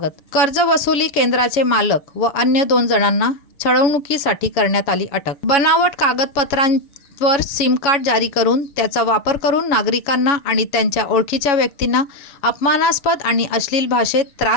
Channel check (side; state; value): right; late; 6.8 ms